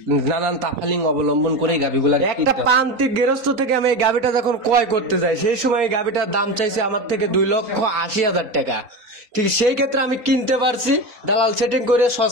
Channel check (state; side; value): late; left; 3.9 ms